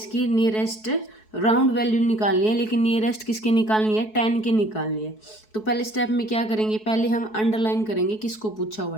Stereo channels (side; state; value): right; late; 4.7 ms